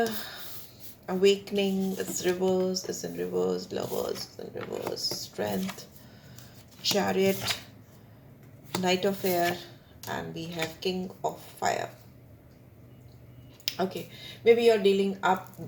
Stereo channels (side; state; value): both; identical; correlation 1.00